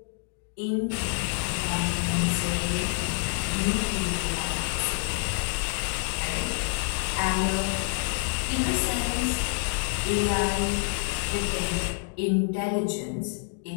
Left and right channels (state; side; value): silent; right; 56 dB below the other